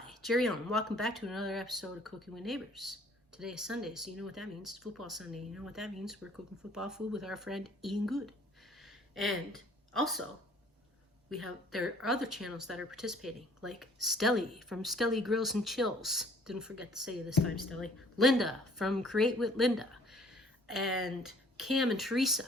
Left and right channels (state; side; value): normal; both; correlation 0.56